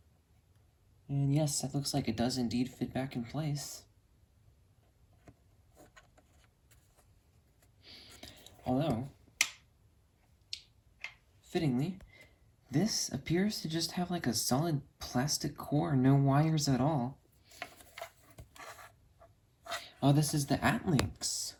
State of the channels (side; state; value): both; identical; correlation 1.00